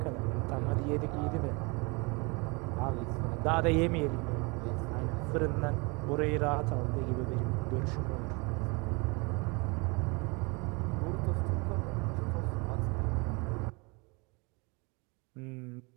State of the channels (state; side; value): quieter; left; 28.9 dB